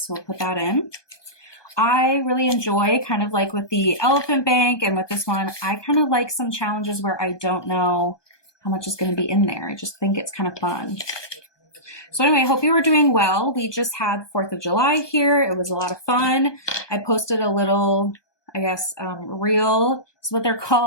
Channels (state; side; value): late; right; 1.2 ms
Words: we'll put that in. I really enjoy, kind of like with the elephant bank and with this one, I kind of like some challenges where I don't know how much is going to be in there. I just think it's kind of fun. So anyway, I hope you were doing well. We just had 4th of July here. It was a lot of fun. I posted a little, reel is what they're